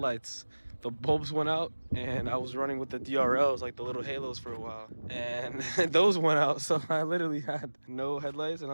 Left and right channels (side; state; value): both; inverted; correlation -1.00